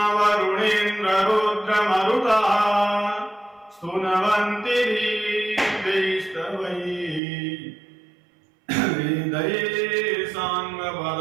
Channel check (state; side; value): drops out; left; at 7.2 s